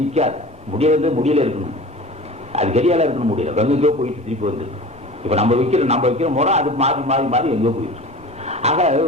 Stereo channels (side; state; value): both; normal; correlation 0.37